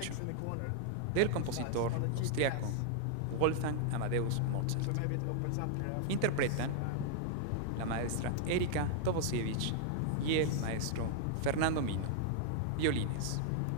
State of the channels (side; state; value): both; different; correlation -0.01